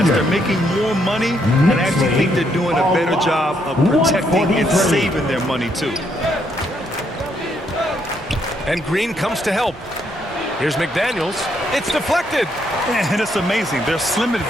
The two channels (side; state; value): both; normal; correlation 0.74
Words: they're making more money, and I actually think they're doing a better job of protecting and saving their money, too. And Green comes to help. Here's McDaniels. It's deflected. And it's amazing. Their slim